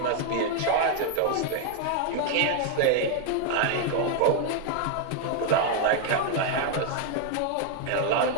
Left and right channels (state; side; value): different; both; correlation 0.00